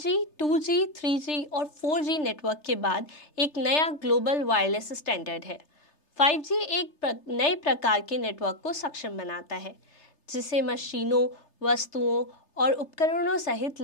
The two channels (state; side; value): late; right; 3.3 ms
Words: 2G, 3G और 4G नेटवर्क के बाद एक नया ग्लोबल वायरलेस स्टैंडर्ड है। 5G एक नए प्रकार के नेटवर्क को सक्षम बनाता है, जिसे मशीनों, वस्तुओं और उपकरणों सहित